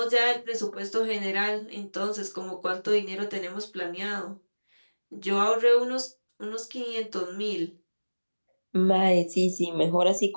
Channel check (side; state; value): both; inverted; correlation -1.00